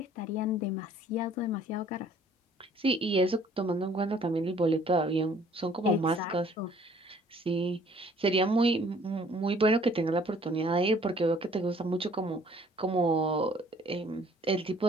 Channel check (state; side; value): normal; both; correlation 0.57